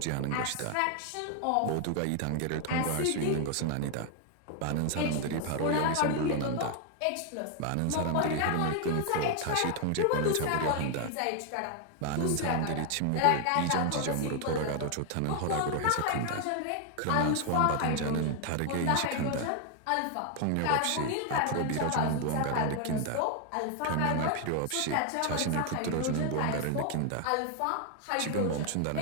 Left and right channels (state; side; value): different; both; correlation 0.00